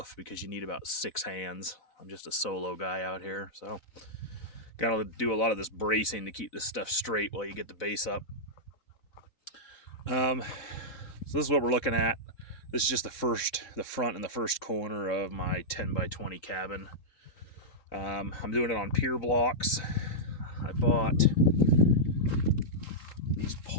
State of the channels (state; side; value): late; right; 4.0 ms